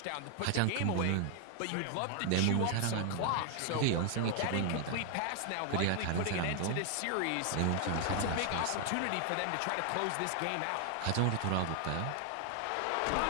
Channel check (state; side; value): different; both; correlation 0.00